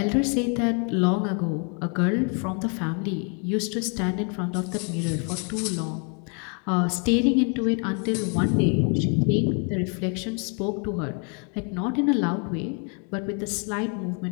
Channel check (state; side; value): quieter; right; 38.3 dB